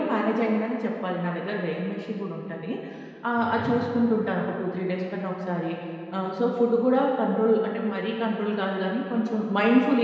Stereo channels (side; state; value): both; identical; correlation 1.00